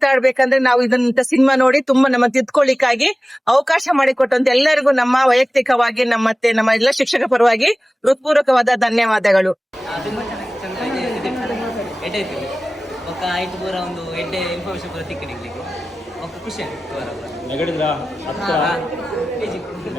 ನಾವು ಇದನ್ನ ಸಿನಿಮಾ ನೋಡಿ ತುಂಬಾ ನಮ್ಮ ತಿದ್ಕೊಳ್ಳಿಕ್ಕಾಗಿ ಅವಕಾಶ ಮಾಡಿಕೊಟ್ಟಂತ ಎಲ್ಲರಿಗೂ ನಮ್ಮ ವೈಯಕ್ತಿಕವಾಗಿ ನಮ್ಮ ಎಲ್ಲ ಶಿಕ್ಷಕ ಪರವಾಗಿ ಹೃತ್ಪೂರ್ವಕವಾದ ಧನ್ಯವಾದಗಳು. ఒక ఐదు పూర ಒಂದು ಎಡ್ಡೆ ಇನ್ಫಾರ್ಮೇಶನ್ ಪೂರ ತಿಕ್ಕಿನಿಗೆ ఒక ಖುಷಿ ಆಯ್ತು. ನೆಗಡಿದ್ರಾ ಹತ್ರ ಪೇಜಿ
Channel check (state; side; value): normal; both; correlation 0.97